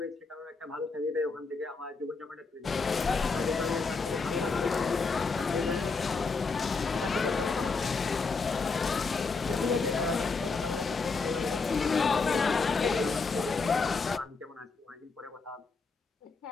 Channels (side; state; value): right; quieter; 4.4 dB